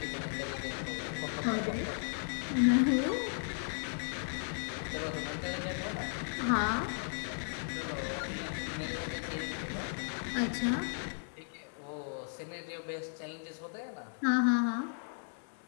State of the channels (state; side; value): silent; right; 54 dB below the other